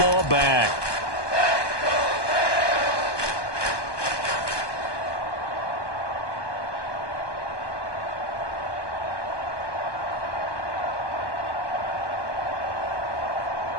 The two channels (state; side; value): late; right; 1.2 ms